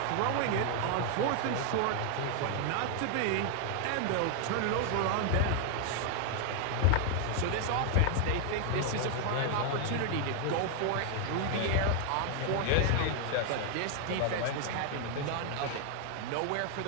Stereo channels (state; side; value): different; both; correlation 0.00